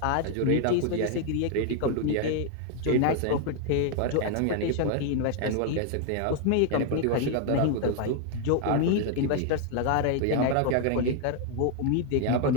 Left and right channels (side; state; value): both; different; correlation 0.00